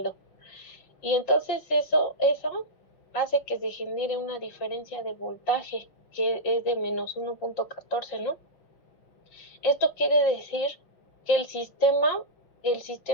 Y entonces eso hace que se genere una diferencia de voltaje que es de menos 1.14, ¿no? Esto quiere decir que el sistema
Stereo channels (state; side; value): late; right; 6.0 ms